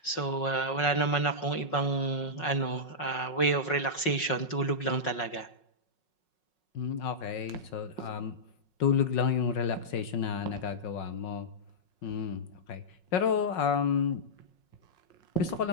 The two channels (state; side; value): late; right; 5.5 ms